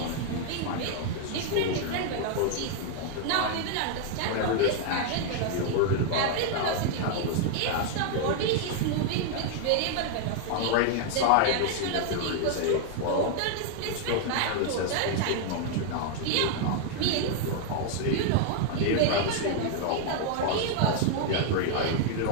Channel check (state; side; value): different; both; correlation 0.00